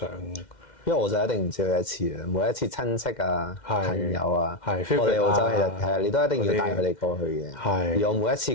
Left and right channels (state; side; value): late; right; 2.1 ms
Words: 因為我就一定唔止去一次嘅，每一次親戚啊、朋友啊，我哋澳洲其實係啊，你都一定要帶佢哋過去嘅。而我每一